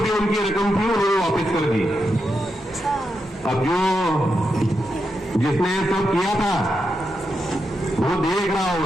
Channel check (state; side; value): normal; both; correlation 0.85